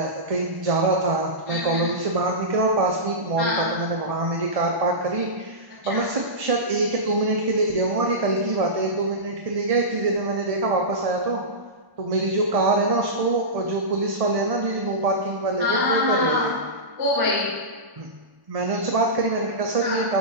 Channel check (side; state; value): left; late; 1.1 ms